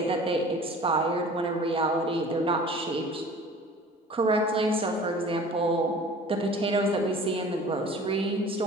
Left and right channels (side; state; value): both; normal; correlation 0.45